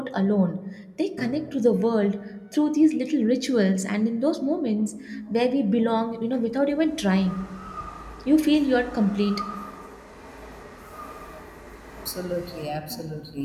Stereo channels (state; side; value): identical; both; correlation 1.00